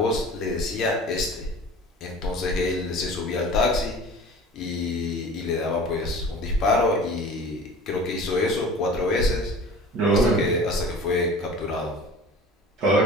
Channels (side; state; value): both; normal; correlation 0.41